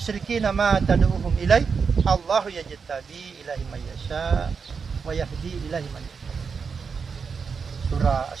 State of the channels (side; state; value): left; quieter; 5.6 dB